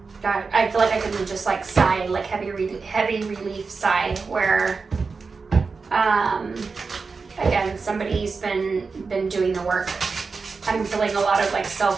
like I can just like sigh, like heavy relief sigh, where again, somebody's been doing the work. I'm feeling a lot of like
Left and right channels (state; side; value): quieter; left; 4.6 dB